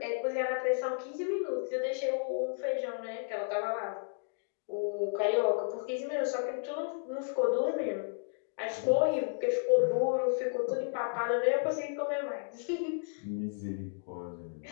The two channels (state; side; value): silent; right; digital silence